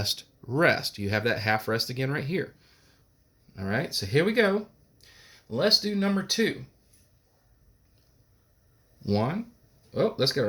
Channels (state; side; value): identical; both; correlation 1.00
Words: rest. You have that half rest again right here. All right, so here we go. Let's do number 2. 1. Oh, let's get